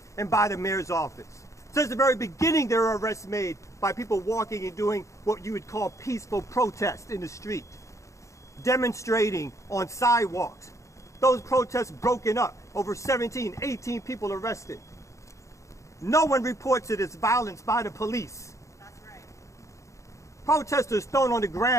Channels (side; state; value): right; late; 0.15 ms